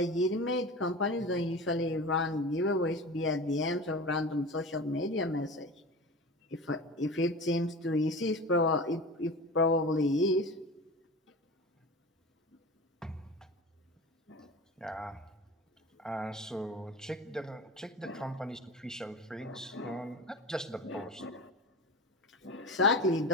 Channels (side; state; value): both; normal; correlation 0.32